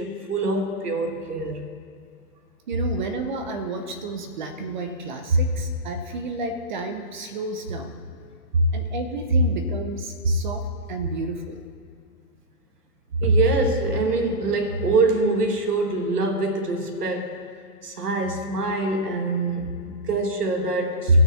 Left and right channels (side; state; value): both; normal; correlation -0.12